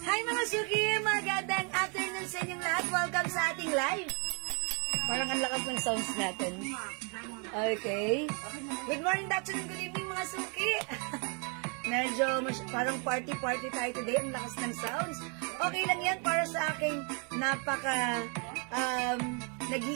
Hi mga Suki! Magandang afternoon sa inyong lahat. Welcome sa ating live. Parang ang lakas ng sounds natin. Okay. Good morning, good afternoon, good evening mga Suki. Medyo parang party-party tayo today. Ang lakas ng sounds. Okay lang yan para sa aking napaka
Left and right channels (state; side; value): quieter; left; 36.0 dB